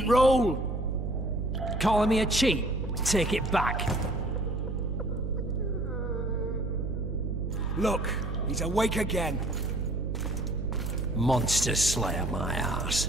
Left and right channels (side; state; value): right; noise; hum, 3 dB below the sound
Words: roll! Calling me a cheat? Take it back. Look, he's awake again. Monster slayer, my ass.